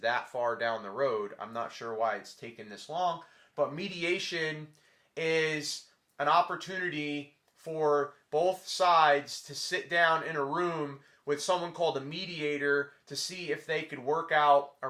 that far down the road. I'm not sure why it's taken this long. But mediation is an opportunity for both sides to sit down in a room with someone called a mediator to see if they could work out a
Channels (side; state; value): both; identical; correlation 1.00